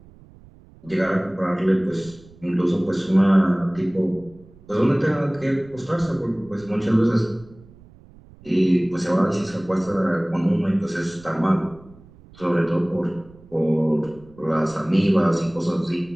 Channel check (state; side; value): noise; right; rumble, 24 dB below the sound